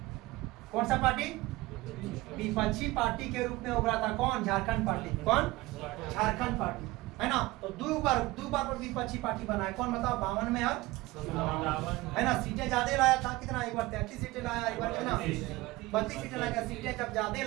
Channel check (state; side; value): quieter; left; 20.1 dB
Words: कौन सा पार्टी? विपक्षी पार्टी के रूप में उभरा था कौन? झारखंड पार्टी। कौन? झारखंड पार्टी, है ना। तो दो बार पर विपक्षी पार्टी बना है, कौन बताओ? 52 में और, है ना। सीटें ज्यादा लाया था, कितना? एक बार 33 सीटें लाया, एक बार कितना? 32 सीटें लाया। सीटें जब ज्यादा